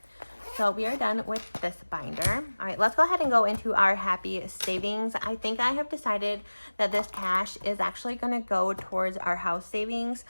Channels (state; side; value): inverted; both; correlation -1.00